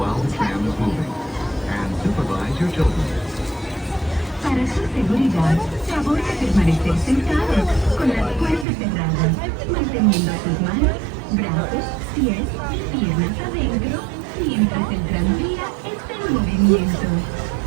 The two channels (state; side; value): drops out; left; at 8.7 s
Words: the tram is moving. And supervise your children. Para su seguridad, favor de permanecer sentado, con las puertas cerradas, manteniendo sus manos, brazos, pies y piernas adentro, mientras el tranvía está en movimiento.